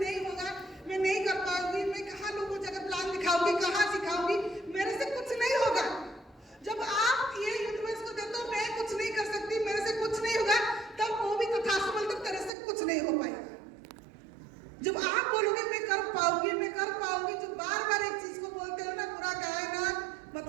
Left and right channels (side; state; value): left; drops out; at 12.5 s